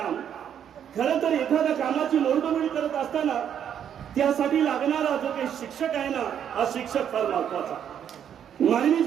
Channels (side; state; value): left; quieter; 9.0 dB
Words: खरं तर एखाद्या कामाची मोडतोड करत असताना त्यासाठी लागणारा जो काही शिक्षक आहे ना, हा शिक्षक फार महत्वाचा. मानवी